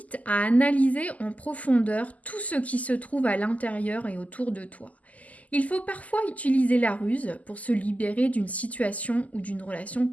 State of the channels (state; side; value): late; right; 0.074 ms